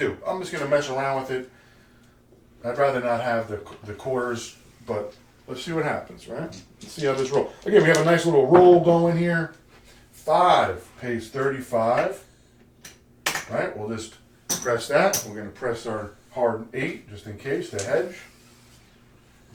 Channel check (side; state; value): both; identical; correlation 1.00